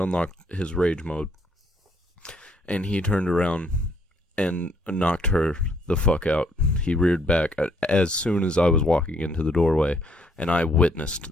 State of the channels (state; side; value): normal; both; correlation 0.68